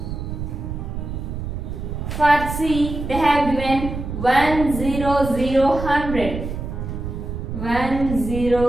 For C, they have given 1, 0, 0, 100. 1,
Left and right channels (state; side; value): noise; right; rumble, 6 dB below the sound